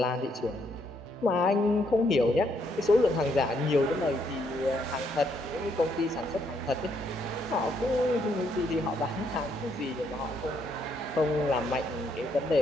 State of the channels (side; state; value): both; normal; correlation 0.73